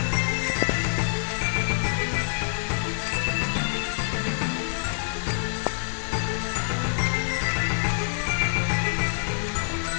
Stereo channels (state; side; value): silent; right; digital silence